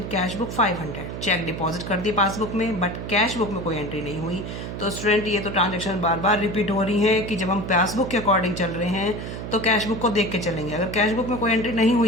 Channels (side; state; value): right; noise; hum, 7 dB below the sound